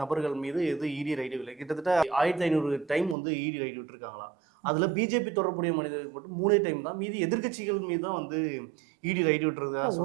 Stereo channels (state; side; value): drops out; left; at 3.2 s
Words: நபர்கள் மீது ஈடி ரைடு இல்லை. கிட்டத்தட்ட 1500 டைம் வந்து ஈடி ரைடு விட்டுருக்காங்களாம். அதில் பிஜேபி தொடர்புடைய மனிதர்கள் மட்டும் 3 டைம் தான், மீதி எதிர்கட்சிகள் மீது தான் வந்து ஈடி ரைடு விட்டுறது.